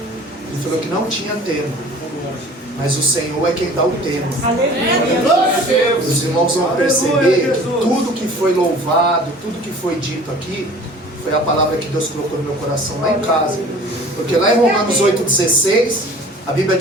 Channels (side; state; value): both; normal; correlation 0.46